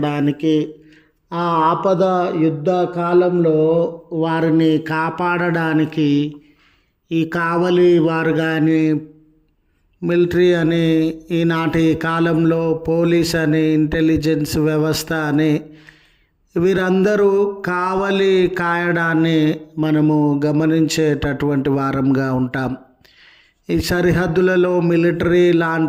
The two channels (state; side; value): identical; both; correlation 1.00